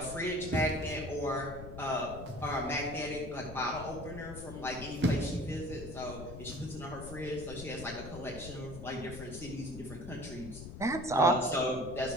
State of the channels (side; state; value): left; noise; rumble, 11 dB below the sound